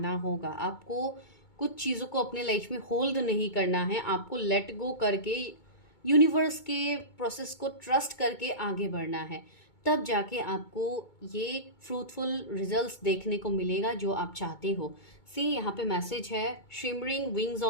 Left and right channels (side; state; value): right; late; 2.2 ms